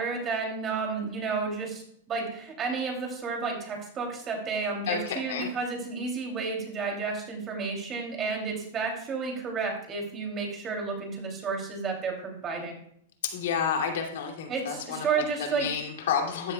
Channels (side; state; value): both; normal; correlation 0.09